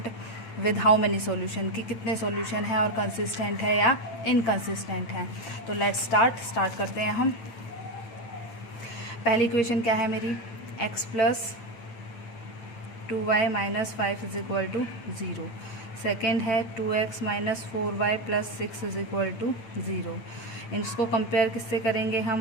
with how many solution, कि कितने सॉल्यूशन है और कंसिस्टेंट है या इनकंसिस्टेंट है। तो लेट्स स्टार्ट करते हैं हम। पहली इक्वेशन क्या है मेरी, x plus 2y minus 5 is equal to 0। Second है 2x minus 4y plus 6 is equal to 0। इसको कंपेयर किससे करेंगे हम,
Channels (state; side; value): late; right; 9.0 ms